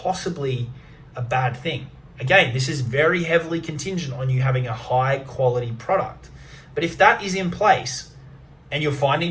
a bad thing? Again, this is very heavily contingent on you having a high quality product. But if that is in place, and you're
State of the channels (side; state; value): both; identical; correlation 1.00